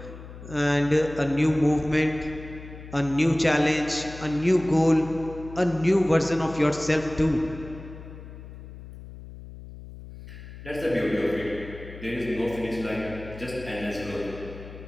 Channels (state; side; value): noise; left; hum, 14 dB below the sound